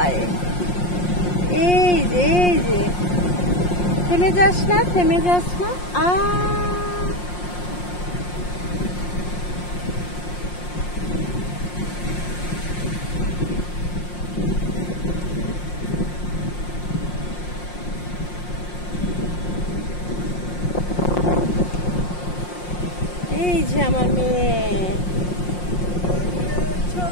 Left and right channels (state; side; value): late; right; 5.6 ms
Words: এই যে থেমে যাস না, থেমে যাস না। এই যে আমার মেয়ে,